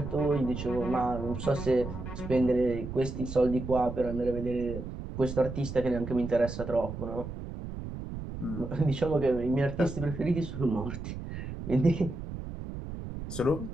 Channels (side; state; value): right; noise; rumble, 8 dB below the sound